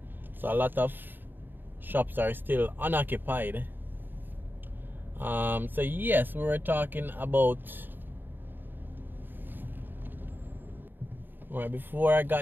So a lot of shops are still unoccupied. So yes, we were talking about, well, before I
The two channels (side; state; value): left; late; 0.093 ms